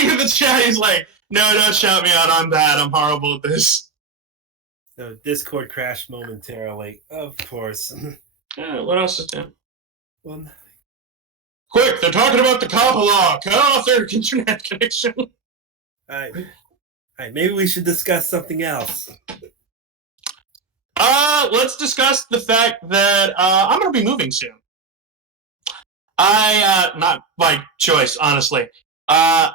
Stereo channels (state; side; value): quieter; left; 4.6 dB